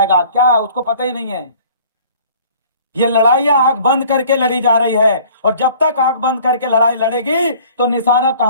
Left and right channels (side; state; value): both; inverted; correlation -0.52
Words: क्या उसको पता ही नहीं है? ये लड़ाइयां आंख बंद करके लड़ी जा रही है, और जब तक आंख बंद करके लड़ाई लड़ेगी तो निशाना